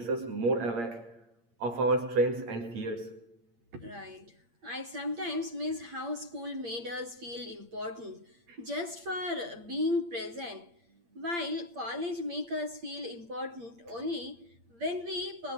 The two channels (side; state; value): left; late; 8.6 ms